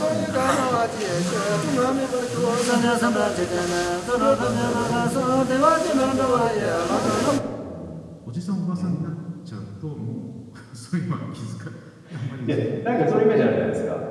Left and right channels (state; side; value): identical; both; correlation 1.00